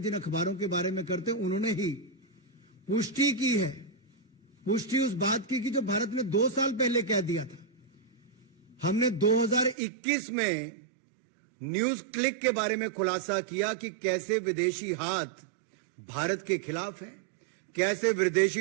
जिन अखबारों के बारे में करते हैं, उन्होंने ही पुष्टि की है। पुष्टि उस बात की कि जो भारत ने 2 साल पहले कह दिया था। हमने 2021 में न्यूज क्लिक के बारे में खुलासा किया कि कैसे विदेशी हाथ भारत के खिलाफ है, कैसे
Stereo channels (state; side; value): drops out; left; at 9.8 s